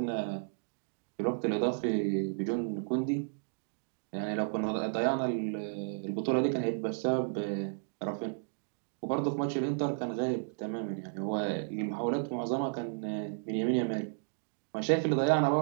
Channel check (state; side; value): silent; left; digital silence